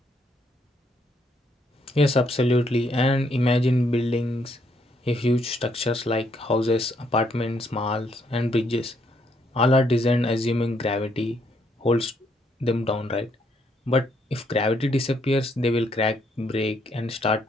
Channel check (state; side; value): normal; both; correlation 0.72